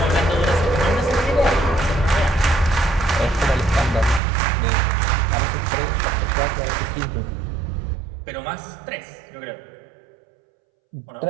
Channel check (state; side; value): drops out; left; at 4.2 s